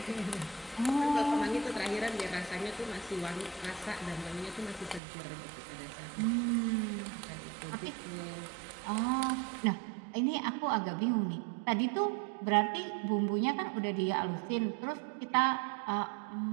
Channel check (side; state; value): left; drops out; at 5.0 s